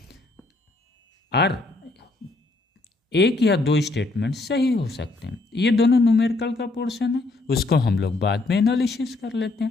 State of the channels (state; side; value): quieter; right; 3.1 dB